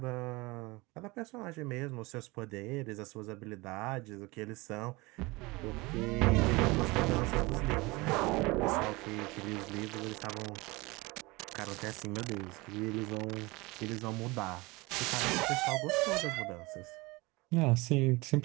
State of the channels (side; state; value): left; quieter; 23.6 dB